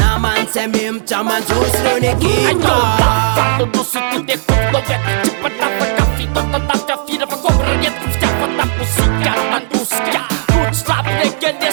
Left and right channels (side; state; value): left; silent; 58 dB below the other